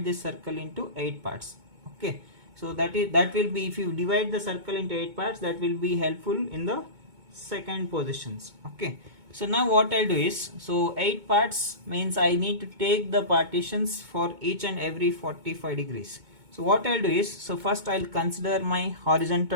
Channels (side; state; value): left; late; 2.2 ms